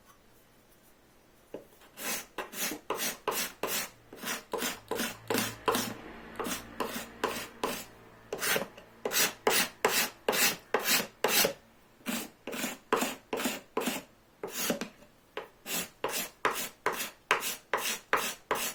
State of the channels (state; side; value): identical; both; correlation 1.00